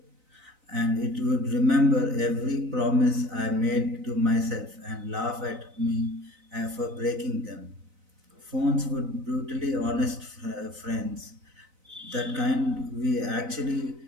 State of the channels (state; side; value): late; left; 4.0 ms